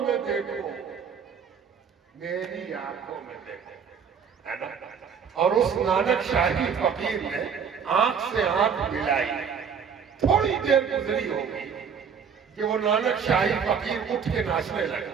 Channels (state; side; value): quieter; left; 6.8 dB